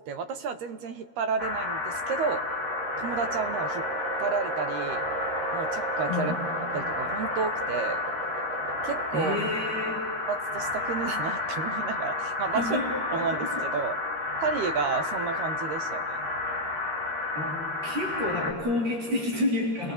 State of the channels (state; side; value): late; left; 13 ms